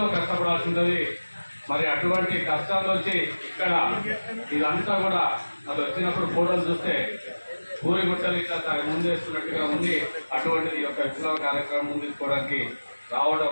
కష్టపడాల్సి ఉంటుంది. మరి అటువంటి కష్టాలు వచ్చి ఇక్కడ ఇదంతా కూడా అది వచ్చినప్పుడు ఫోటోలు చూస్తే పూరి గుట్టలు ఇట్లా ముందేస్తున్నట్టుగా ఉంది. అటువంటిది ఈ యొక్క విప్లవ కార్యక్రమం ముందుకోవడానికి రావడం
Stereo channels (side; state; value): both; inverted; correlation -1.00